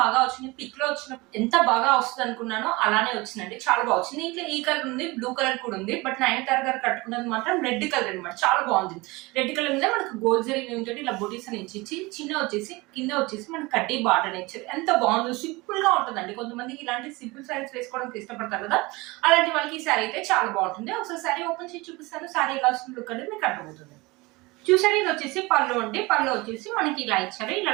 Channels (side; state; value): left; quieter; 23.2 dB